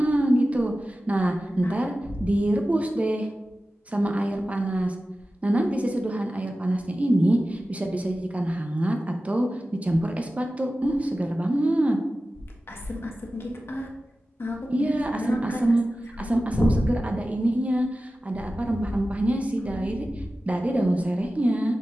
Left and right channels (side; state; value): both; normal; correlation 0.95